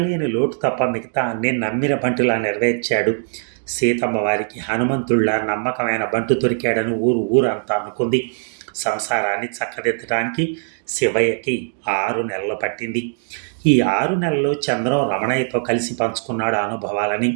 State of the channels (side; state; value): left; silent; digital silence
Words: లేని లోటు తప్ప మిగతా అన్నీ నమ్మిన బంటులా నెరవేర్చాడు. సీతమ్మ వారికి హనుమంతుళ్ళ నమ్మకమైన బంటు దొరికాడని ఊరంతా అనుకుంది. సంసారాన్ని చక్కదిద్దడానికి శివయ్యకి 6 నెలలు పట్టింది. ఈ 6 నెలల్లో చంద్రం రమణయ్యతో కలిసి పంచుకున్నాడు ఆ అనుభవాలని.